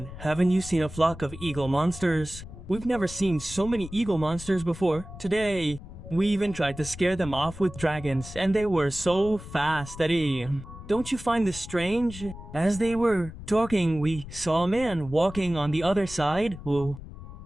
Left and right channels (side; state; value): left; noise; rumble, 13 dB below the sound